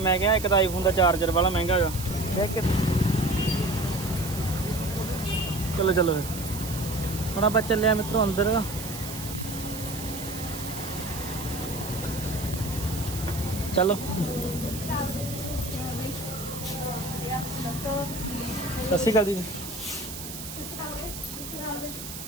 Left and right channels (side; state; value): right; noise; hiss, 10 dB below the sound